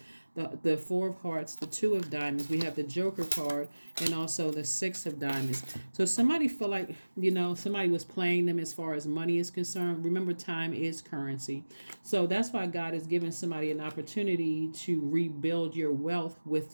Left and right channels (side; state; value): both; inverted; correlation -1.00